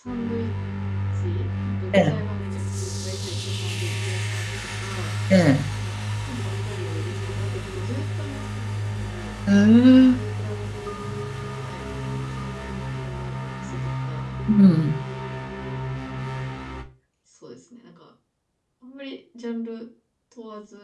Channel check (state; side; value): identical; both; correlation 1.00